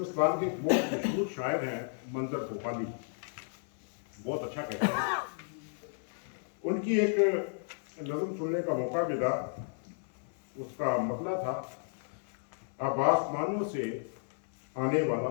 کے ایک بہت مشہور شاعر ہیں منظر بھوپالی، بہت اچھا کہتے ہیں. ان کی ایک نظم سننے کا موقع ملا، اس کا مطلب تھا اب آسمانوں سے آنے والا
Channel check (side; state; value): right; silent; 56 dB below the other